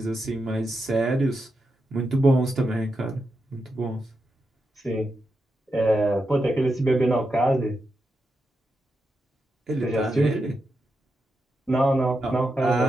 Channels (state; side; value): normal; both; correlation 0.86